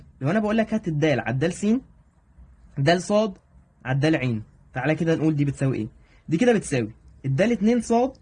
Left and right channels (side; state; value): both; identical; correlation 1.00